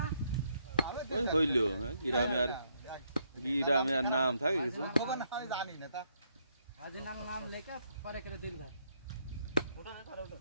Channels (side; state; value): both; inverted; correlation -0.74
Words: ওই হইলো গ্রামে আর নাম থাকে কিছু খবর না আমি জানি না তা আজ নাম লেখা পরে করে দিলদার ওটা না করে ওটা